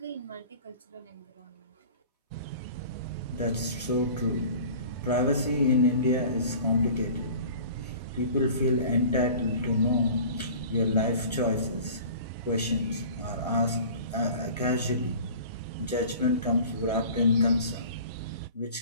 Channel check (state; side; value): inverted; both; correlation -0.43